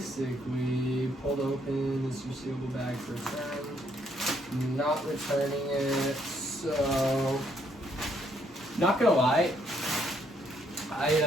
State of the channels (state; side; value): normal; both; correlation 0.71